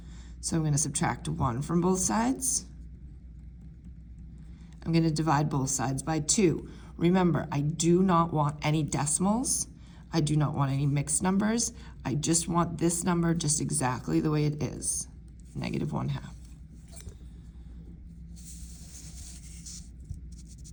So I'm going to subtract 1 from both sides. I'm going to divide both sides by 2. Remember, I do not want any decimals. I do not want any mixed numbers. I just want this number just exactly the way it is, negative 1/2.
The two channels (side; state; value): both; identical; correlation 1.00